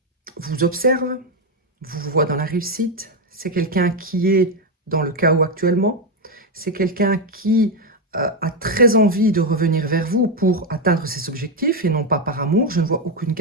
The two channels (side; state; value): both; normal; correlation 0.06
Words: vous observe, vous voit dans la réussite. C'est quelqu'un qui est dans le chaos actuellement. C'est quelqu'un qui a très envie de revenir vers vous pour atteindre ses objectifs et non pas par amour. Je ne vois aucune